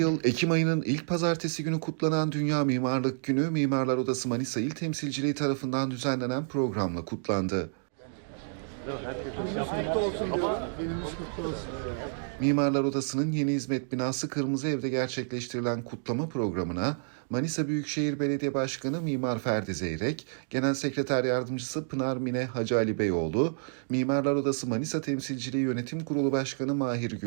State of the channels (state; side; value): silent; left; digital silence